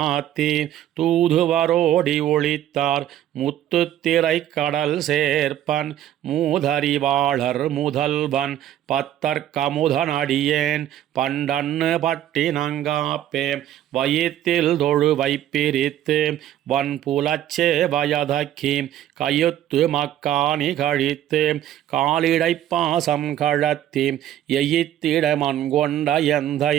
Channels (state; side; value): quieter; left; 12.0 dB